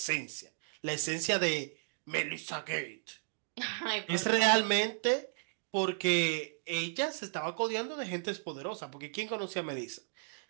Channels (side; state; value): left; silent; digital silence